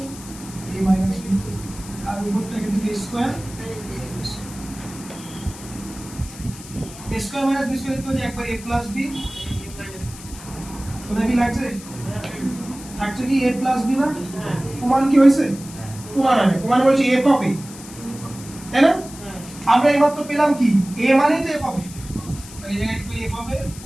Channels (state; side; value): noise; left; hiss, 16 dB below the sound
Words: এ মাইনাস বি আর উপরটা কিন্তু A square square minus B square তো একবার a প্লাস b শোনা কি লাগছে থাকছে কি a প্লাস b না প্রমাণ কি হইছে প্রমাণ হবে প্রমাণ বলছে f অফ a তাই না আমরা এইমাত্র পেলাম কি a মানে তো f অফ a তাই এই জায়গায় একটু f অফ a